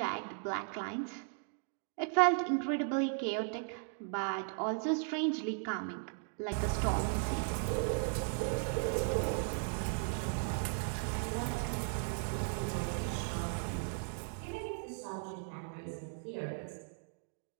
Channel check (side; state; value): left; silent; 53 dB below the other